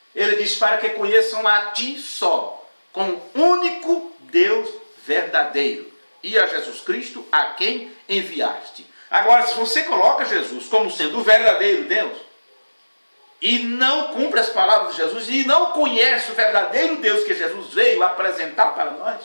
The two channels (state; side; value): inverted; both; correlation -1.00